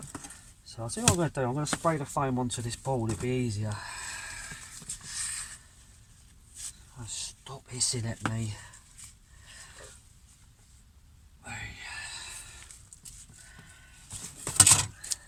So I'll see what I'm going to do. I'm going to spray the foam onto this board, it'll be easier. Oh, stop hissing at me.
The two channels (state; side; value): identical; both; correlation 1.00